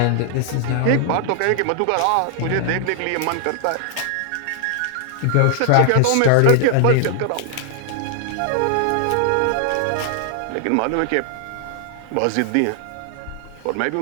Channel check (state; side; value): different; both; correlation 0.00